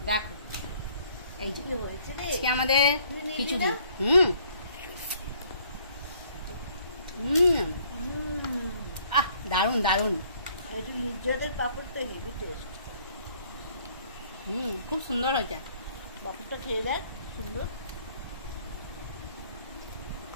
দেখো এই যে আজকে আমাদের খিচুড়ি, দারুন দারুন। একটু নির্যাতের পাপড় তো হেভি টেস্ট, খুব সুন্দর হয়েছে। পাপড়টা খেয়ে দেখ, সুন্দর।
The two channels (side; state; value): both; inverted; correlation -0.61